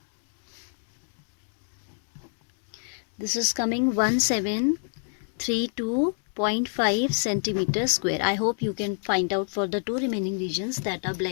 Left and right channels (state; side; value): silent; right; 60 dB below the other